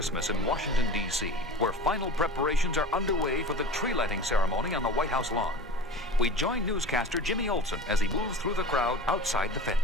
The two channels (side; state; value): both; normal; correlation 0.35